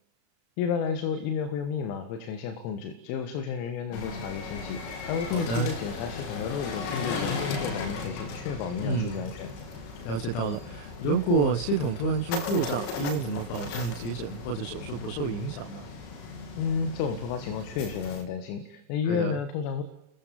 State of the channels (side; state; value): right; late; 35 ms